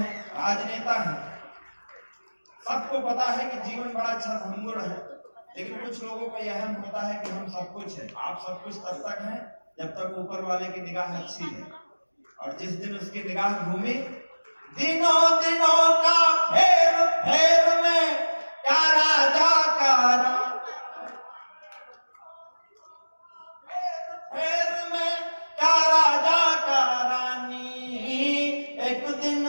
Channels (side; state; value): both; inverted; correlation -1.00